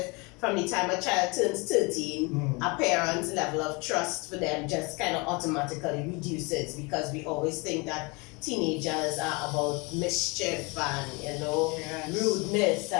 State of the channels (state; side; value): quieter; right; 28.3 dB